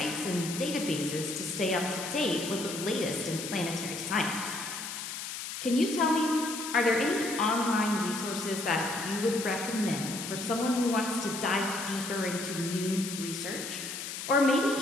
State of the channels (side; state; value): left; noise; hiss, 7 dB below the sound